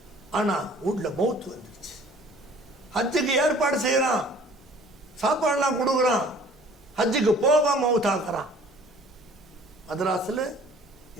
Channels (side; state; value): both; normal; correlation 0.52